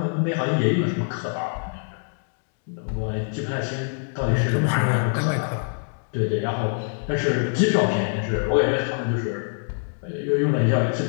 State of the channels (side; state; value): right; silent; digital silence